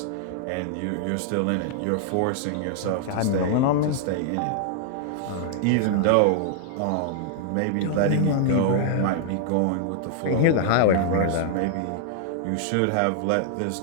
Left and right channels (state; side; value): different; both; correlation -0.01